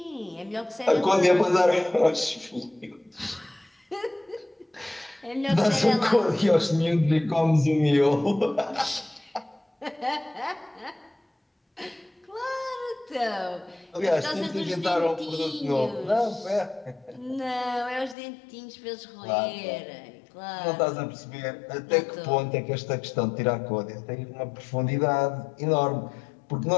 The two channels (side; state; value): right; drops out; at 18.2 s